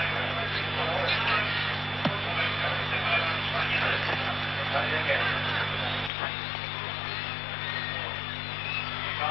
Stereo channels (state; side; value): drops out; right; at 6.1 s